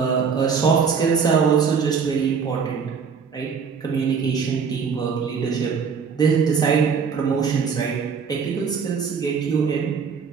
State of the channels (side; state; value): left; quieter; 6.1 dB